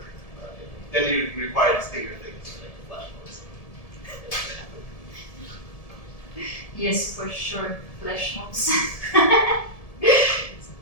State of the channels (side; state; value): right; late; 1.7 ms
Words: Then you require these bigger things like flash mobs. Yes, for sure, flash mobs.